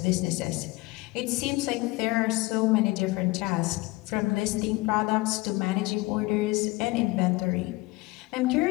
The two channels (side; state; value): right; quieter; 22.1 dB